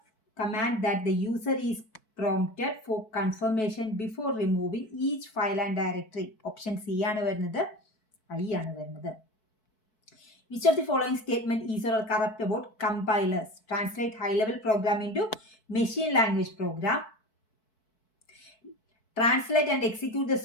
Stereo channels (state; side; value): late; right; 4.6 ms